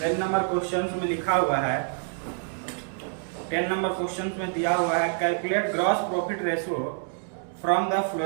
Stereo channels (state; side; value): silent; left; 60 dB below the other